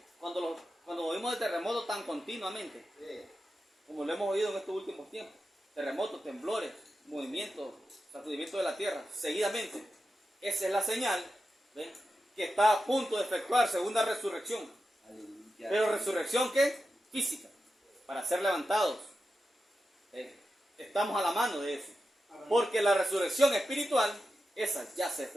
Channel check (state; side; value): normal; both; correlation 0.90